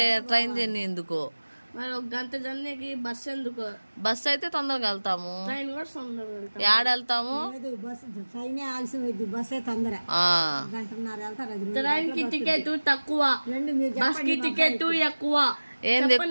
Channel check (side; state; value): both; inverted; correlation -1.00